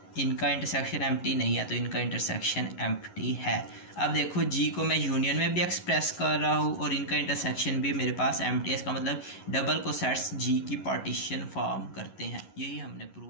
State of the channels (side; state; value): right; late; 11 ms